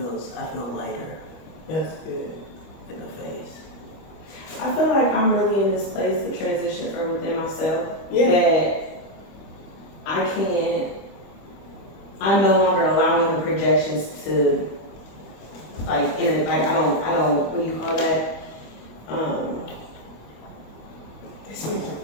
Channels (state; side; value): late; right; 25 ms